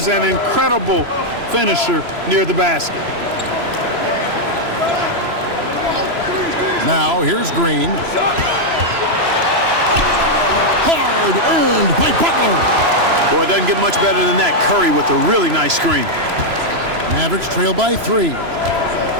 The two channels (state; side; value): late; left; 3.0 ms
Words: an incredible finisher near the basket. Now here's Green. Hard earned by Butler. Boy, it doesn't get much better than that. Curry with a really nice screen. Mavericks trail by 3.